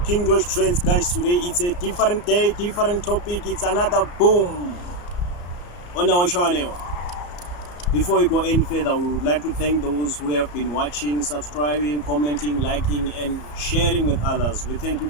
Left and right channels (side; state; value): right; late; 34 ms